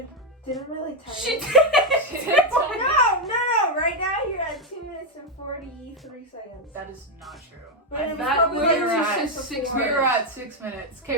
didn't really tell She you. did! No. Right now you're at 2 minutes and 43 seconds. That is not true. But it was That probably we were like at six six. before. We were at 6 minutes.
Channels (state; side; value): normal; both; correlation 0.04